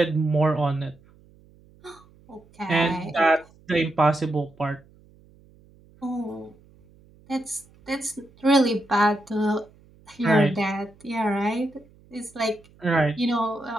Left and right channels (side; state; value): right; noise; hum, 28 dB below the sound